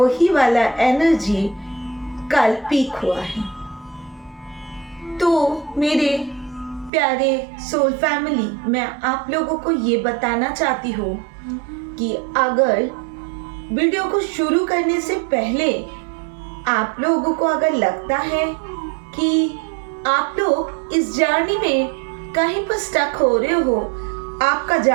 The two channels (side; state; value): left; drops out; at 6.9 s